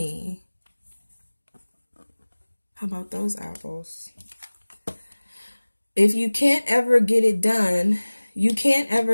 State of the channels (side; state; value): both; inverted; correlation -1.00